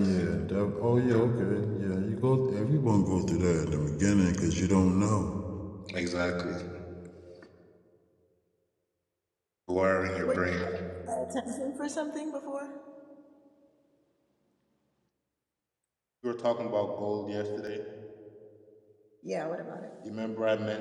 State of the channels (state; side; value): identical; both; correlation 1.00